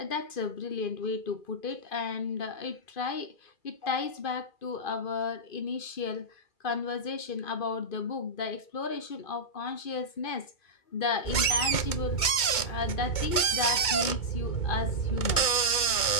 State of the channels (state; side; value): late; right; 2.2 ms